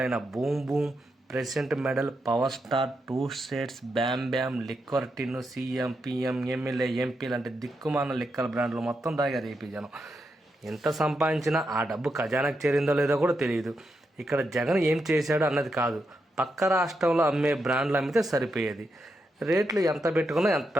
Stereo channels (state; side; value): normal; both; correlation 0.84